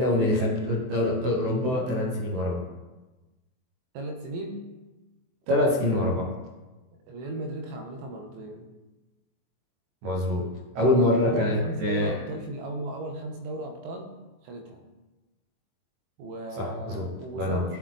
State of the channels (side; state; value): left; late; 23 ms